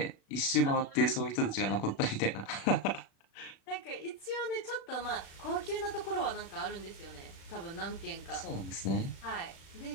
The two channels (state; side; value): late; right; 36 ms